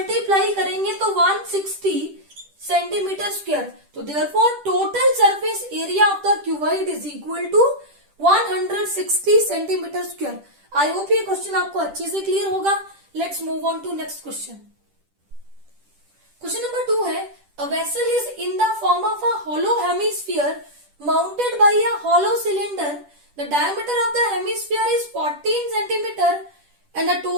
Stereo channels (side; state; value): left; late; 10 ms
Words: करेंगे तो 160 सेंटीमीटर स्क्वायर। तो therefore total surface area of the cuboid is equal to 160 centimetre square. I hope ये क्वेश्चन आपको अच्छे से क्लियर होगा। Let's move on to next question. Question number 2 है a vessel is in the form of a hollow hemisphere mounted by a hollow cylinder. The diameter of the hemisphere is 14 centimeter and the